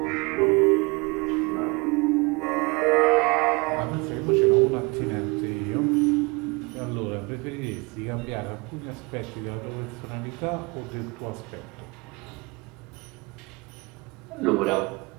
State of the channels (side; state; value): left; quieter; 27.2 dB